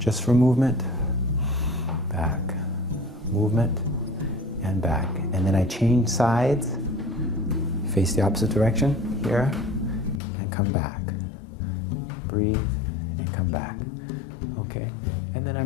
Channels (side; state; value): right; drops out; at 10.2 s